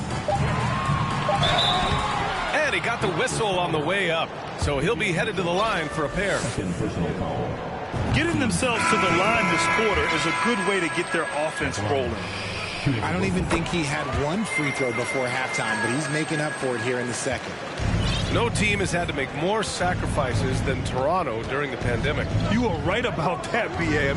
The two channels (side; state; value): both; identical; correlation 1.00